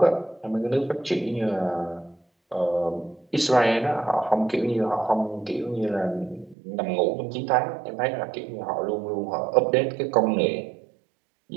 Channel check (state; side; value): drops out; left; at 6.6 s